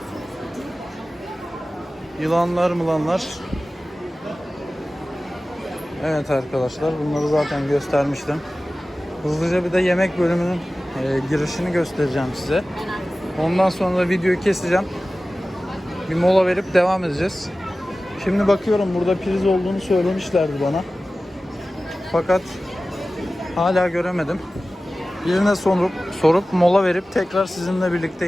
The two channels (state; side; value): normal; both; correlation 0.96